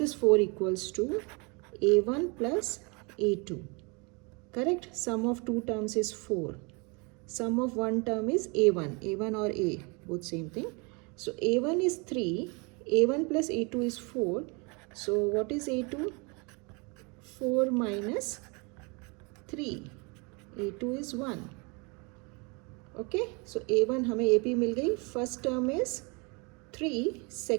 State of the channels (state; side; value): quieter; left; 30.7 dB